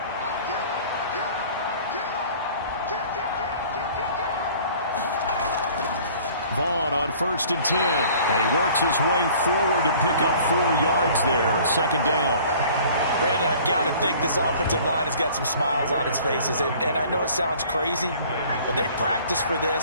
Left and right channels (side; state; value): both; inverted; correlation -0.50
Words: Vaughn on 1st and 10. And he works his way forward to pick up 4 yards there. 2nd down. Brandon, I've got to think this offensive line has got some smiles on its faces. And I know it sounds crazy, but they practiced for